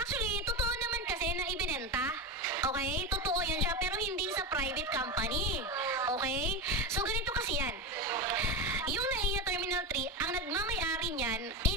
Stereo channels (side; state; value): both; normal; correlation 0.19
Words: totoo naman kasi na ibinenta. Okay? Totoo yan siya, pero hindi sa private company. Okay? So, ganito kasi yan. Yung NAIA Terminal 3, ang nagmamay-ari niyan